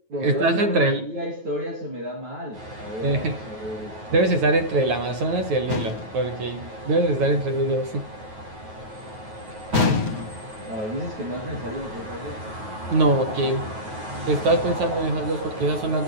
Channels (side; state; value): left; late; 9.3 ms